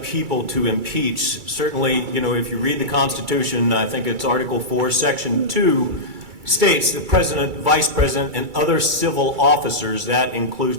to impeach, certainly, you know, if you read the Constitution, I think it's Article 4, Section 2, states the President, Vice President, and other civil officers, that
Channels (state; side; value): late; left; 2.3 ms